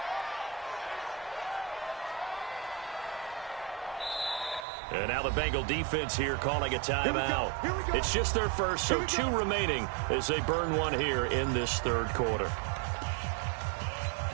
And now the Bengal defense here calling a timeout. It's just their first, so 2 remaining as they burn one here in this 3rd quarter.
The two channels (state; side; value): drops out; left; at 4.7 s